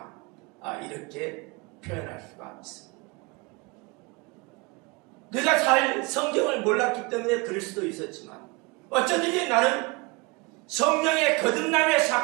이렇게 표현할 수가 있습니다. 내가 잘 성경을 몰랐기 때문에 그럴 수도 있었지만, 어쩌든지 나는 성령의 거듭남의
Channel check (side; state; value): left; quieter; 26.5 dB